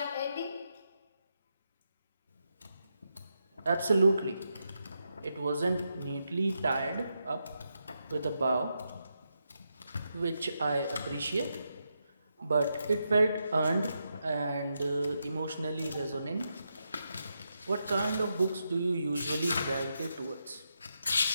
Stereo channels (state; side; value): inverted; both; correlation -0.84